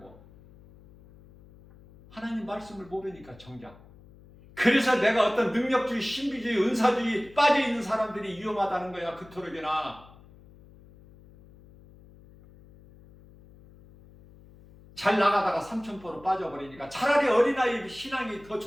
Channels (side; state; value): left; noise; hum, 23 dB below the sound